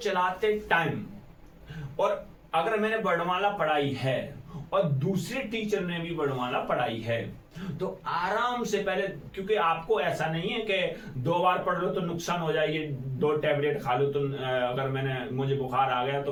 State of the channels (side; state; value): both; identical; correlation 1.00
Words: टाइम, और अगर मैंने वर्णमाला पढ़ाई है और दूसरे टीचर ने भी वर्णमाला पढ़ाई है, तो आराम से पहले, क्योंकि आपको ऐसा नहीं है कि 2 बार पढ़ लो तो नुकसान हो जाएगी, 2 टैबलेट खा लो तो अगर मुझे बुखार आ गया तो